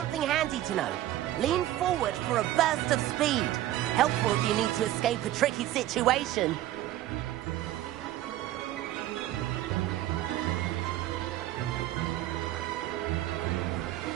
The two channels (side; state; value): left; quieter; 14.3 dB